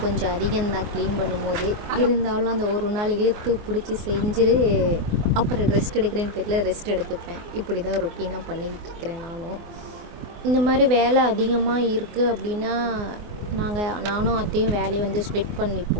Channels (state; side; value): late; left; 24 ms